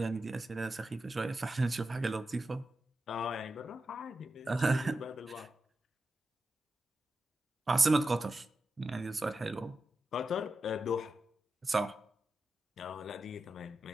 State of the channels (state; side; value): normal; both; correlation 0.90